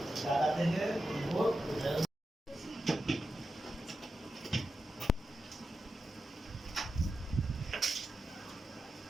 দাদা থেকে ভোট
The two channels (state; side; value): normal; both; correlation 0.90